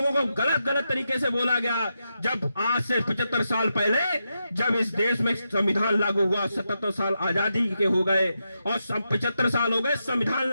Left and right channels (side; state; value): both; inverted; correlation -0.86